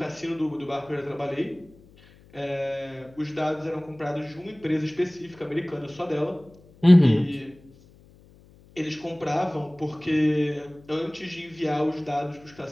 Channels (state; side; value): noise; left; hum, 26 dB below the sound